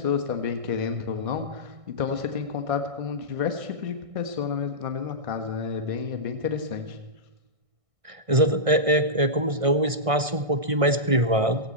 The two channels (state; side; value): late; left; 1.6 ms